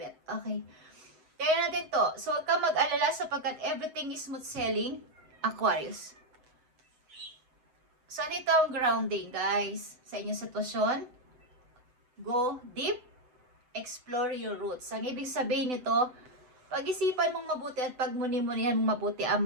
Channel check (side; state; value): left; late; 7.9 ms